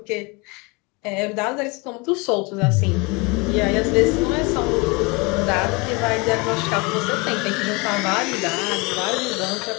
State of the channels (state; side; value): quieter; right; 27.2 dB